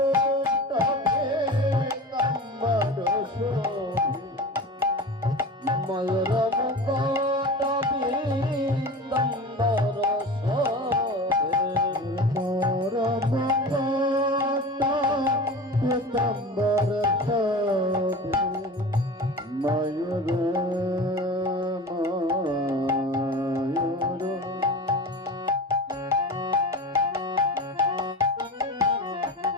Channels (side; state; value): both; normal; correlation 0.32